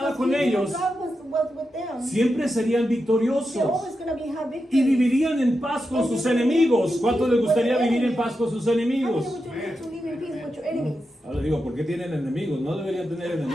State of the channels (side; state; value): both; normal; correlation 0.88